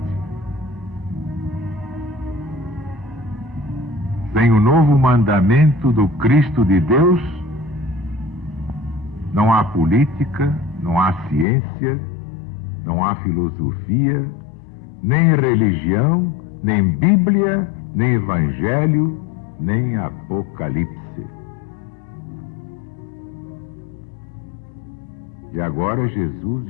Sem o novo mandamento do Cristo de Deus, não há política, não há ciência, não há filosofia, nem religião, nem Bíblia, nem Evangelho, nem Apocalipse. E agora Jesus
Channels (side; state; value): right; drops out; at 11.5 s